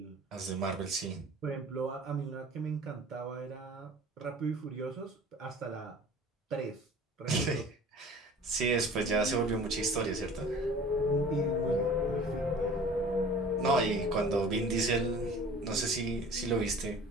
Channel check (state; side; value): normal; both; correlation 0.45